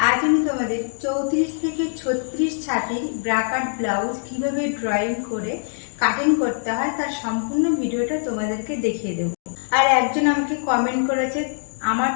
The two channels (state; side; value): silent; right; digital silence